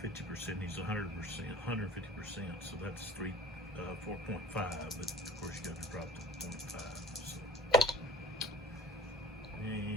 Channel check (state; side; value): normal; both; correlation 0.44